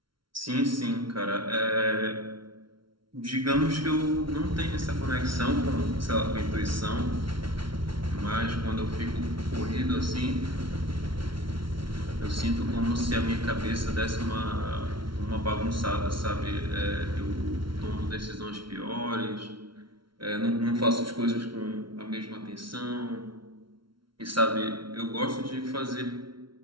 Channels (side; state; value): left; late; 0.74 ms